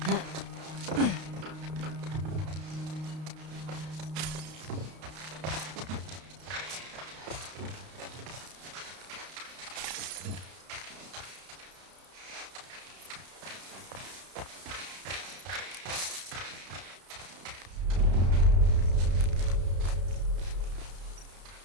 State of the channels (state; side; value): late; left; 32 ms